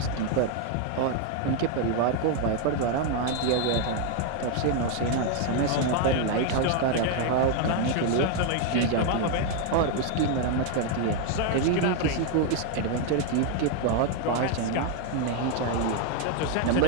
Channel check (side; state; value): both; different; correlation 0.01